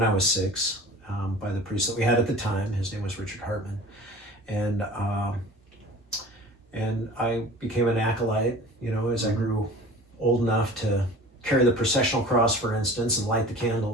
I was 6 by the priest that we had at the time. His name was Richard Hartman, and I became an acolyte. As I grew old enough to carry the processional cross, for instance, and light the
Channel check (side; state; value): both; normal; correlation 0.42